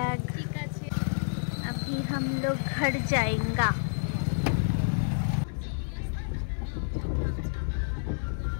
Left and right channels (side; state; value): right; silent; 58 dB below the other